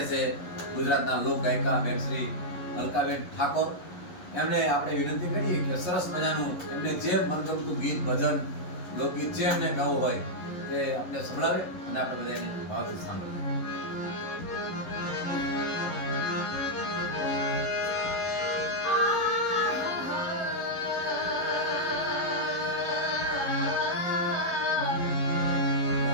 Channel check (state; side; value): late; right; 11 ms